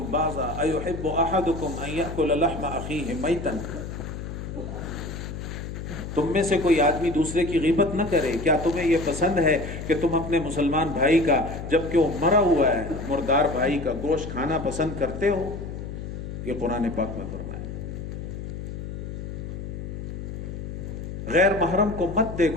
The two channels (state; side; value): noise; left; hum, 7 dB below the sound